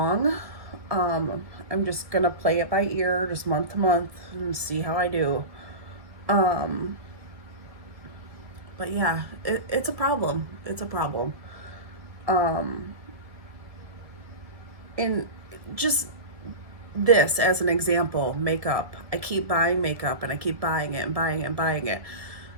I'm just going to play it by ear, just month to month, and see how I do. But yeah, it's a problem. It's a problem. And just this as an example, makeup. I keep buying makeup and I keep buying it and buying it and buying it.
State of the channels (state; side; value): late; left; 1.7 ms